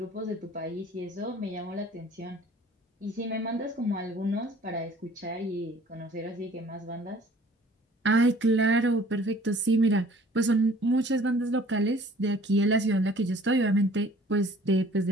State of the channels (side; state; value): both; normal; correlation 0.52